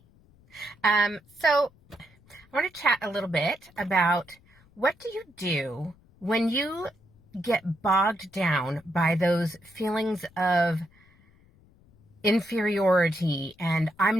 So I want to chat a little bit about what do you do when you get bogged down by those feelings of inferiority and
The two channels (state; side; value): noise; left; rumble, 29 dB below the sound